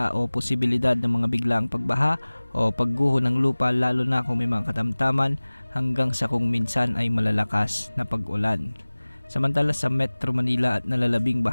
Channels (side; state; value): both; inverted; correlation -1.00